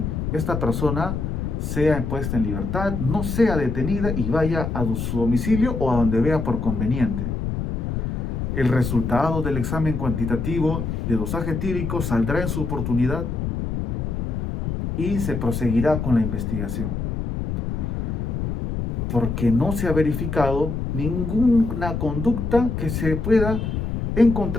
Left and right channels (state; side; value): noise; left; rumble, 2 dB below the sound